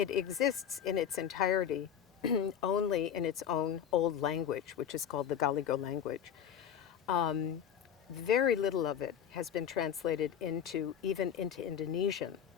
in its entirety only in its own old language, which is called the Galigo language. Very little of it has been translated even into Indonesian.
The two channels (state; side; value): quieter; right; 8.9 dB